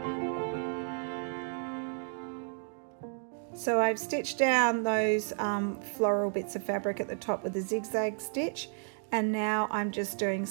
So I've stitched down those floral bits of fabric at the top with a zigzag stitch, and now I'm just doing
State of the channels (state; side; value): silent; left; 55 dB below the other